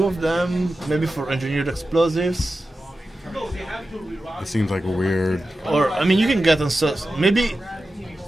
of them, maybe for engineered explosives. It seems like a weird. Or I mean, you can get maybe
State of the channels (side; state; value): both; normal; correlation 0.92